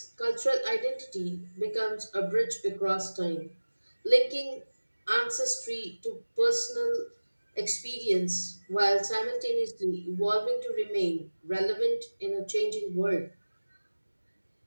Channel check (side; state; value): both; inverted; correlation -1.00